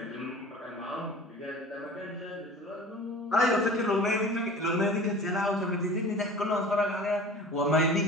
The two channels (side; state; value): both; normal; correlation 0.41